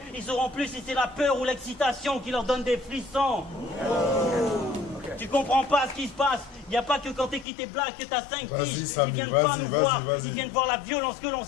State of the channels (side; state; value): right; drops out; at 7.5 s